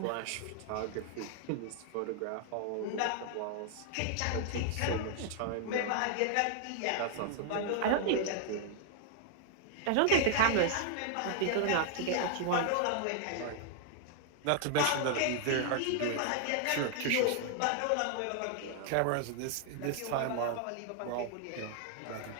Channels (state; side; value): different; both; correlation 0.00